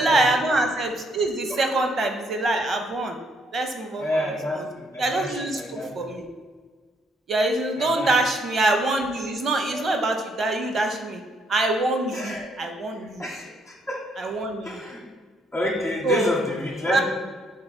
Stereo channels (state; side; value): normal; both; correlation 0.71